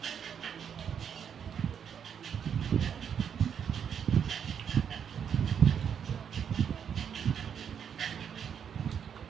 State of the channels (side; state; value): left; quieter; 7.9 dB